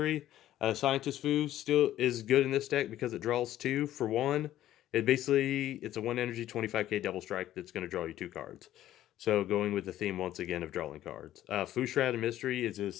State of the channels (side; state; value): right; quieter; 13.1 dB